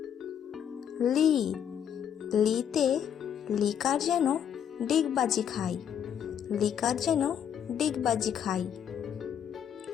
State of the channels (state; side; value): quieter; right; 8.9 dB